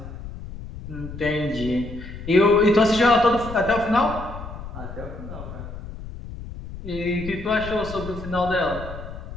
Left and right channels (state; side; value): noise; left; rumble, 11 dB below the sound